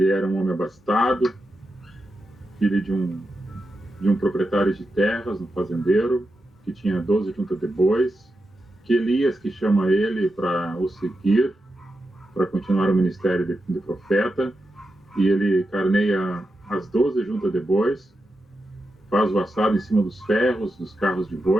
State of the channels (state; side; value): normal; both; correlation 0.88